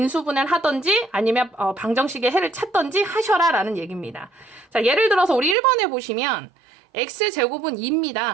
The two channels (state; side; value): drops out; left; at 5.6 s